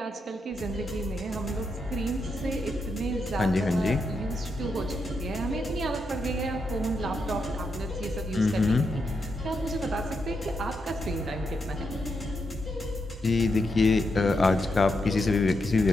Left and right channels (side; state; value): both; normal; correlation 0.83